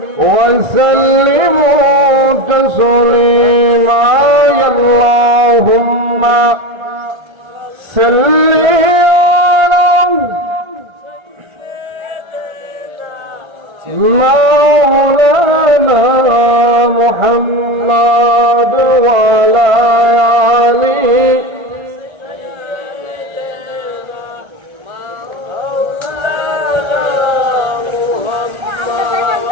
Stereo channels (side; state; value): left; late; 1.5 ms